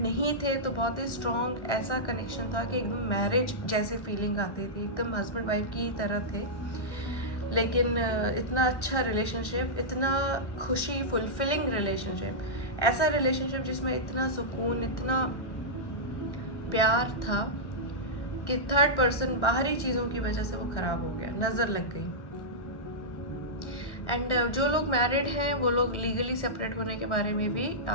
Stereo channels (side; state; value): right; late; 1.1 ms